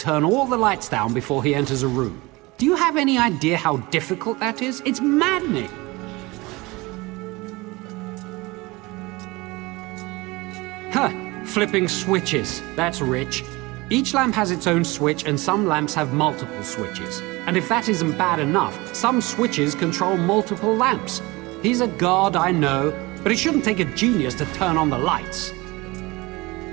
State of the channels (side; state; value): left; quieter; 22.8 dB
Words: all the lights down before he enters a room. Do you have any idea how difficult that is? It's maddening! Huh! Flipping switches. That's rich. Each lamp has its own switch, and some lamps have multiple switches. And if that isn't bad enough, some switches control multiple lamps. He's a god, I know, but it shouldn't take a genius to turn on the lights.